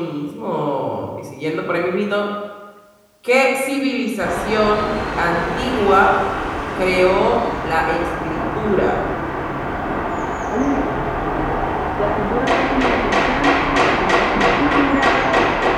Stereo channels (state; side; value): identical; both; correlation 1.00